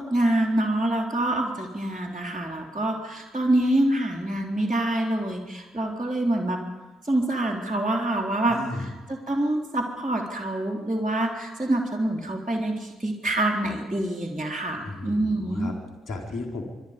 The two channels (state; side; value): normal; both; correlation 0.79